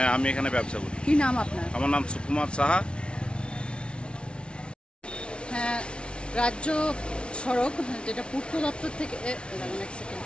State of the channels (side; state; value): right; late; 0.058 ms